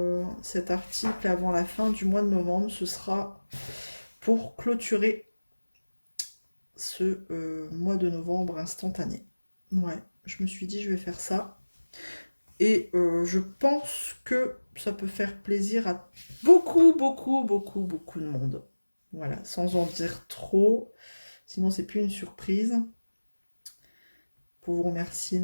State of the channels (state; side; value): inverted; both; correlation -1.00